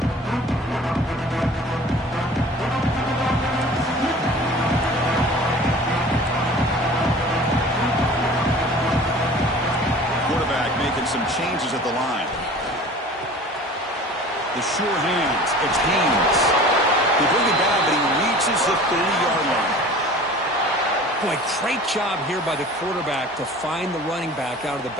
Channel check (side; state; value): both; normal; correlation 0.43